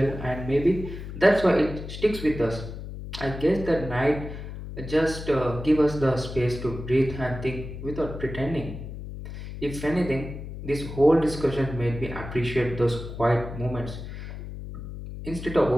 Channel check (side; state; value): left; noise; hum, 9 dB below the sound